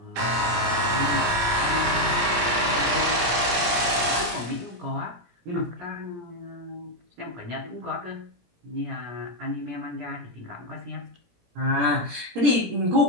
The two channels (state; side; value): late; left; 17 ms